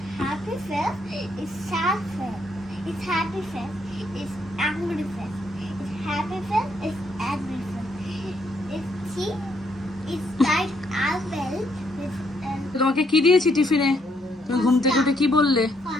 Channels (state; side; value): normal; both; correlation 0.73